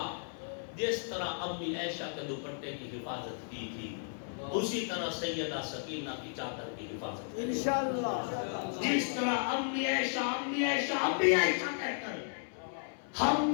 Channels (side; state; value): right; silent; 55 dB below the other